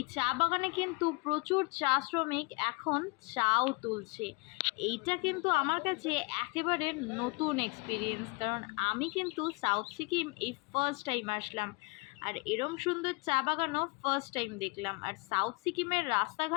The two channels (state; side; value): quieter; right; 28.7 dB